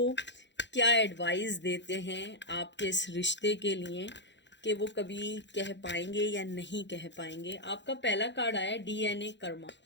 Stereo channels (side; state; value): right; late; 0.52 ms